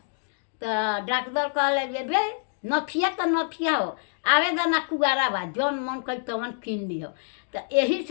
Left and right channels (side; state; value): right; silent; digital silence